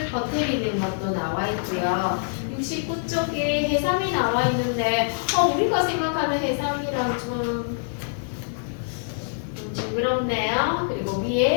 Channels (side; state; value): right; silent; digital silence